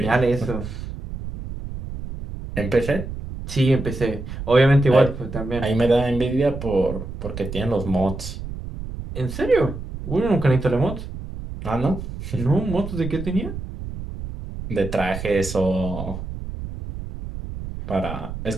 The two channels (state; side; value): noise; right; rumble, 9 dB below the sound